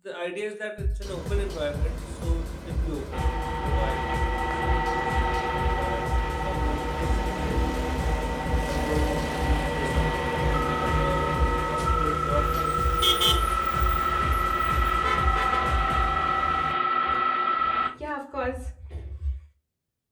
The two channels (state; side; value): identical; both; correlation 1.00